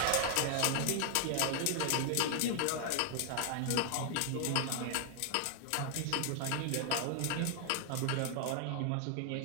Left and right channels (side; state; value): both; different; correlation 0.00